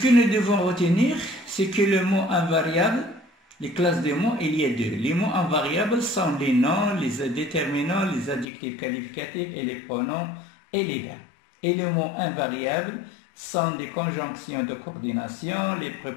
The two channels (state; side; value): drops out; right; at 8.5 s